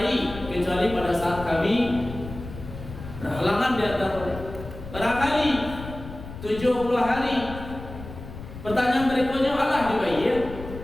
kecuali pada saat kami berhalangan di atas barangkali 70 hari. Pertanyaan berikutnya Allah dibayar.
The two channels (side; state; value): left; noise; rumble, 12 dB below the sound